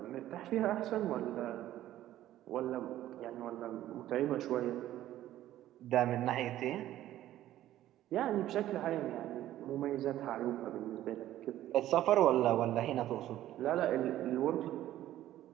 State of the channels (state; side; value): quieter; left; 13.5 dB